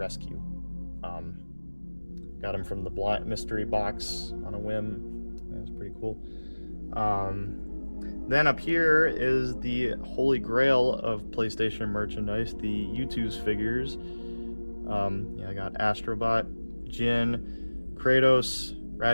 Got him from the mystery box on a whim. Yeah, it's pretty cool. Then up here is the holy grail of PlayStation merchandise, the U2's figures. Yeah, I got Astrobot, Jin, Kratos,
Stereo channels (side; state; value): both; inverted; correlation -1.00